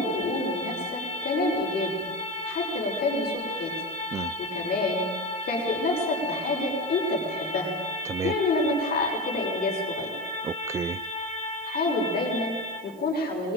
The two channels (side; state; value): right; noise; hiss, 27 dB below the sound